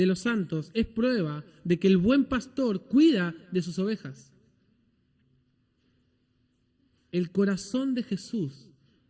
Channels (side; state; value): both; identical; correlation 1.00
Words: los santos, es prueba de que el buen pastor cuida de sus ovejas. El corazón de Jesús